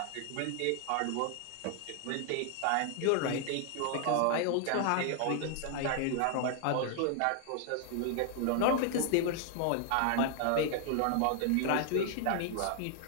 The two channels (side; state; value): both; different; correlation 0.00